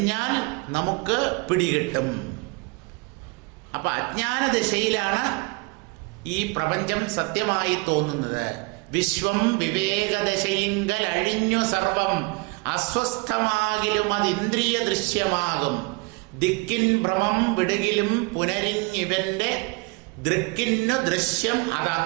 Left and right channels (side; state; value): left; quieter; 27.4 dB